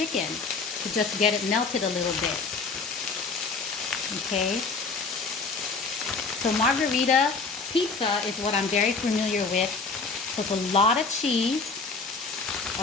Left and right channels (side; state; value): right; quieter; 4.4 dB